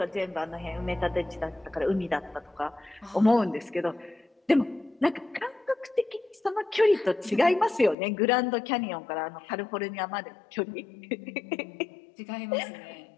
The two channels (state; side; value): drops out; right; at 8.0 s